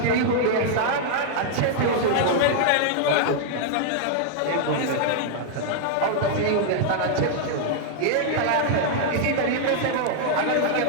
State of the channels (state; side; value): different; both; correlation 0.00